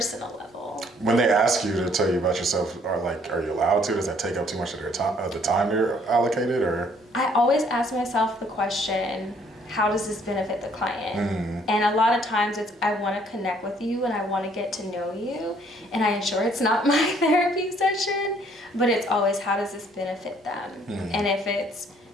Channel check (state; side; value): normal; both; correlation 0.63